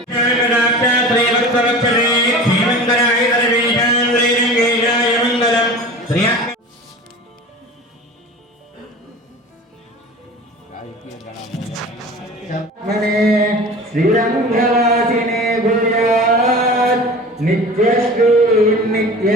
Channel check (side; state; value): both; normal; correlation 0.37